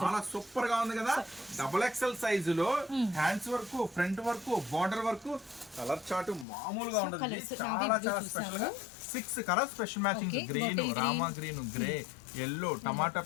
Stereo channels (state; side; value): drops out; right; at 6.5 s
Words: చాలా సూపర్ గా ఉంది కదా. డబుల్ ఎక్సెల్ సైజు లో hands work, front work, border work. Colour chart మామూలుగా ఉంటుంది. చాలా స్పెషల్ గా 6 colour special matching. Green, Rama green, grey, yellow, tomato